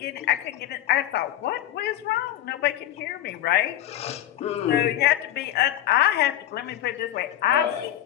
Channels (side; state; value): right; quieter; 12.7 dB